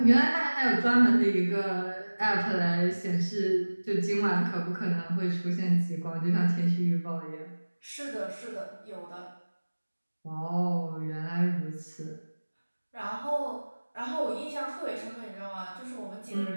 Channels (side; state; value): both; inverted; correlation -1.00